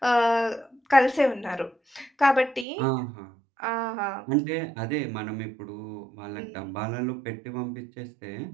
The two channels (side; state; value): left; drops out; at 2.7 s